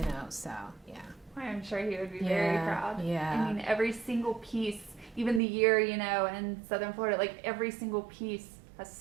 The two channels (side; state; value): left; drops out; at 5.4 s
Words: so, yeah. I'm sure he would be very proud. Yeah. I mean, every single piece, even the year, in Southern Florida, like every single piece has